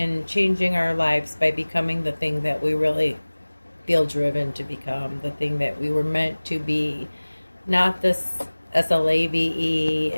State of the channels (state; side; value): inverted; both; correlation -1.00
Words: changing our lives by becoming the thing that we really feel driven to become, the thing that we were meant to be, not this SLAVE